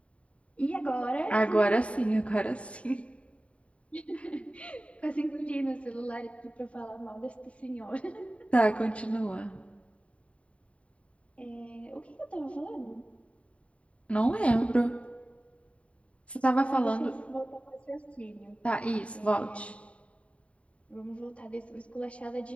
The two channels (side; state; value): right; late; 0.064 ms